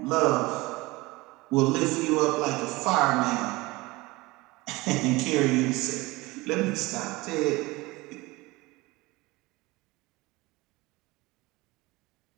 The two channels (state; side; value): quieter; left; 21.9 dB